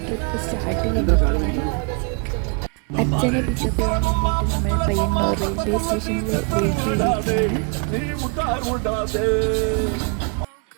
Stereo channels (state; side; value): quieter; left; 36.8 dB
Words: ട്രിപ്പ് സ്റ്റാർട്ട് ചെയ്തിട്ടാണ്. അച്ഛനെ പിക്കപ്പ് ചെയ്യാൻ വേണ്ടിയിട്ട് നമ്മൾ പയ്യന്നൂർ റെയിൽവേ സ്റ്റേഷനിൽ വെയിറ്റ് ചെയ്തിരിക്കുകയാണ്.